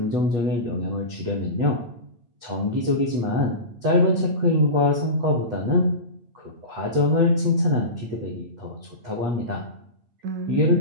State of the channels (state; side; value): late; left; 8.3 ms